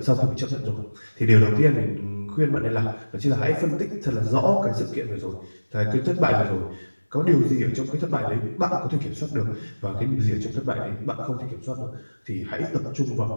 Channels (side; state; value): both; inverted; correlation -1.00